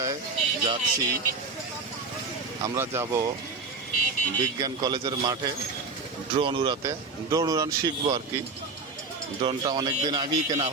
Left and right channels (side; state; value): left; quieter; 4.0 dB